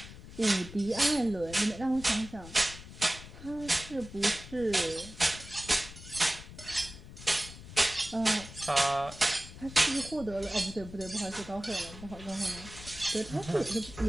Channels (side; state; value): left; noise; rumble, 15 dB below the sound